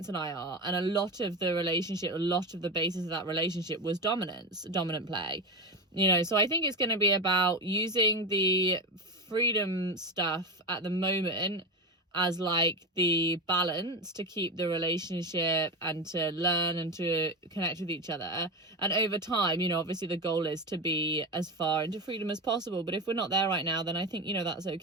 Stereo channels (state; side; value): normal; both; correlation 0.19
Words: and I are, and a lot of the relationship, a lot of the basis of that relationship was dominant play, you know. So I think it's going to be about using the freedom stuff at the moment as like the balance to keep the relationship and to learn and to connect with each other. And over time, you know, obviously the goal is to be as far into freedom as possible, but if we're not there right now, then I think, you know, that's